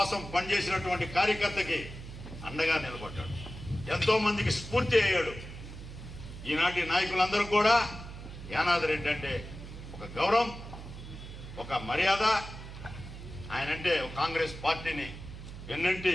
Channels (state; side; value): noise; right; hum, 12 dB below the sound